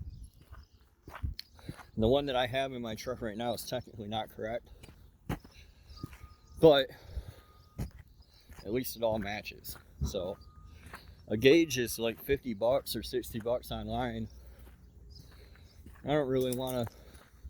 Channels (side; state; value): both; identical; correlation 1.00